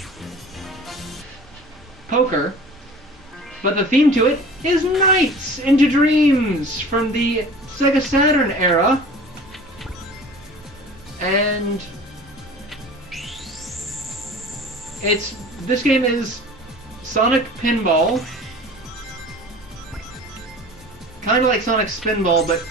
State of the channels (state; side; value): normal; both; correlation 0.42